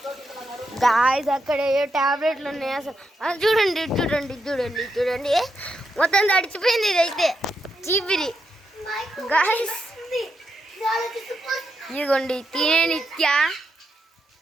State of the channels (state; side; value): normal; both; correlation 0.83